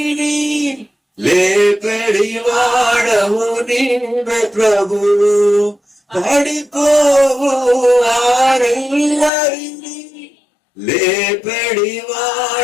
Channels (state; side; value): drops out; right; at 9.3 s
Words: లేపెడి వాడవు నీవే ప్రభువు. పడిపోవు వారెల్లరినీ లేపెడి